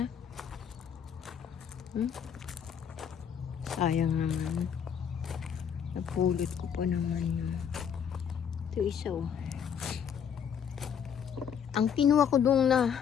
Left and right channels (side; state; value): right; quieter; 7.8 dB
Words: na. Sayang naman. Napulot ko pa naman yun. Ito isa oh. Ang kinuha ko dong na